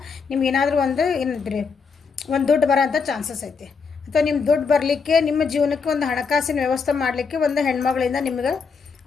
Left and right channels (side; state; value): right; quieter; 5.3 dB